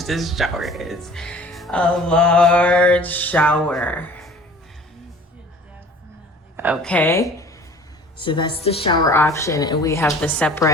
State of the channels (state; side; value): normal; both; correlation 0.47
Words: this shower is. A large shower. Okay. So that's the shower option, and we have the